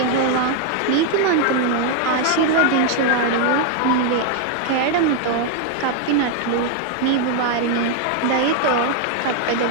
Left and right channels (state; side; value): different; both; correlation 0.01